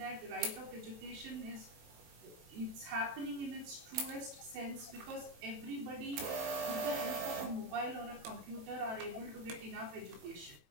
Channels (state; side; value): late; left; 18 ms